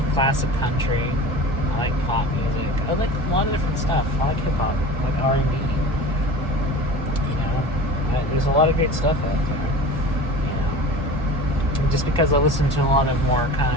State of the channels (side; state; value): both; normal; correlation 0.36